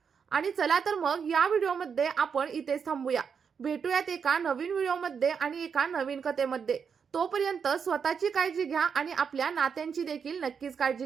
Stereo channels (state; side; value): quieter; left; 6.5 dB